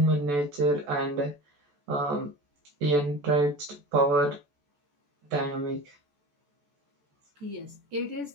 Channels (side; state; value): left; late; 14 ms